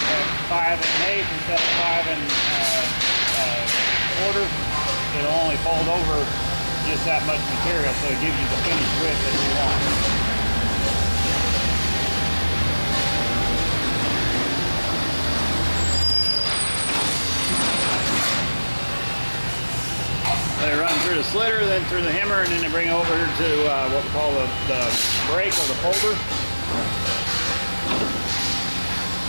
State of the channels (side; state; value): both; inverted; correlation -1.00